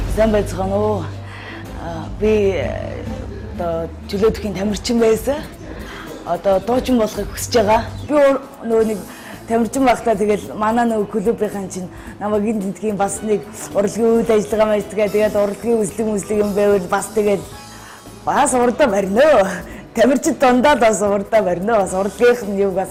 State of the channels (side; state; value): both; identical; correlation 1.00